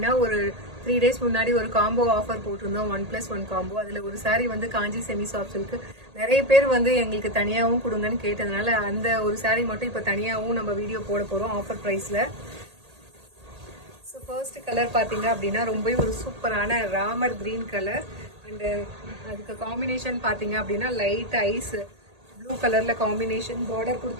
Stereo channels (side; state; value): left; late; 1.8 ms